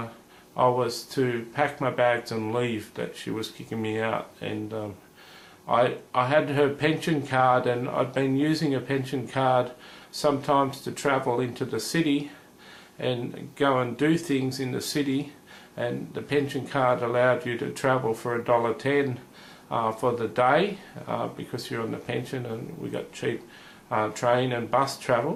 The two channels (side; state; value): both; identical; correlation 1.00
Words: was to pack my bags and leave, that she was kicking me out. And I had her pension card, and I'd been using a pension card sometimes to travel into the city and go and do things in the city, and the pension card allowed you to travel for $1.10 for the day because you're on the pension, and we got cheap train and bus